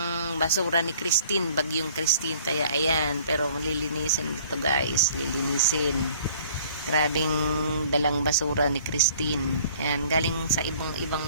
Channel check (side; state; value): both; inverted; correlation -0.55